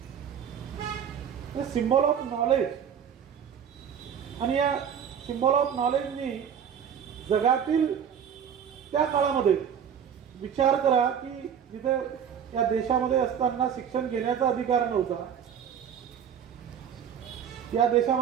हे सिम्बॉल ऑफ नॉलेज, आणि या सिम्बॉल ऑफ नॉलेजनी जगातील त्या काळामध्ये विचार करा की जिथे या देशामध्ये असताना शिक्षण घेण्याचा अधिकार नव्हता, या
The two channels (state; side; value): quieter; left; 8.2 dB